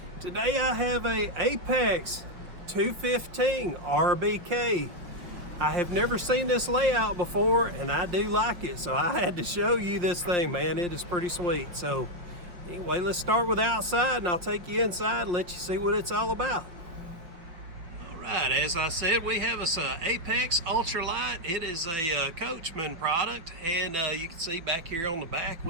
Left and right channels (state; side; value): late; left; 5.1 ms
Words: Today I have a Apex 215 RBK. I have never seen this layout before and I do like it, so I had to show you this thing, man. It is pretty sweet. So anyway, let's start with outside and I'll take you inside and let you see what it's all about. Alright, as I said, we have us a Apex Ultra-Lite. It is a Coachman product, and you can see back here on the back